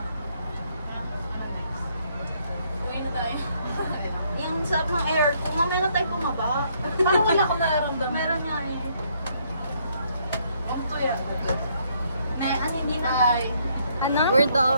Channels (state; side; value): inverted; both; correlation -0.70